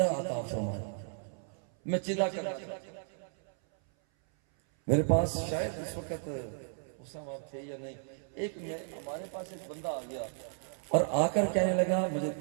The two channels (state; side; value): silent; left; 55 dB below the other